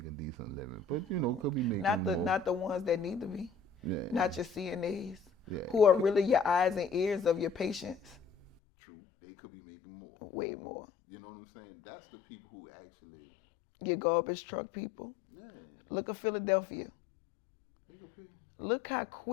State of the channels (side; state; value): right; drops out; at 8.5 s